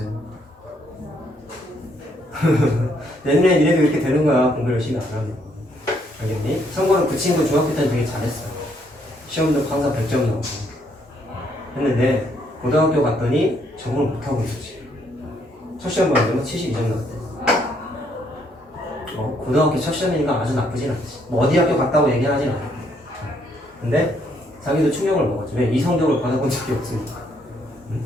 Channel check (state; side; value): normal; both; correlation 0.70